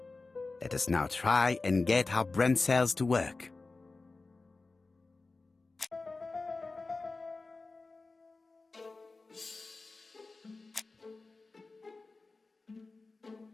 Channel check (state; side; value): quieter; right; 3.7 dB